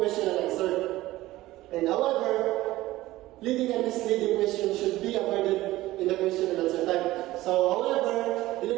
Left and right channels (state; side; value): quieter; left; 16.9 dB